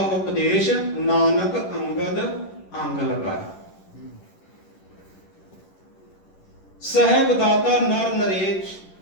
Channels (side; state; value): right; late; 11 ms